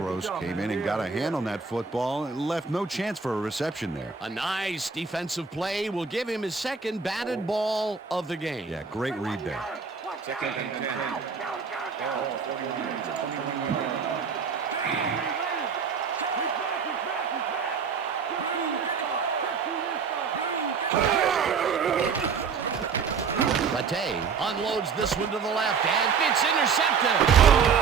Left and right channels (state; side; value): quieter; left; 5.7 dB